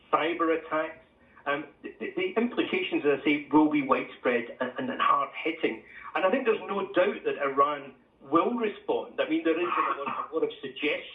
cyber attacks. The implications, as I say, will be widespread and hard-hitting. And I think there's no doubt that Iran will respond. I mean, there is a lot of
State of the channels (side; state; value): both; identical; correlation 1.00